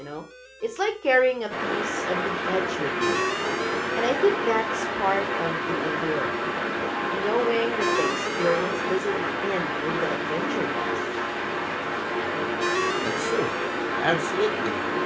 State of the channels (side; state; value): both; identical; correlation 1.00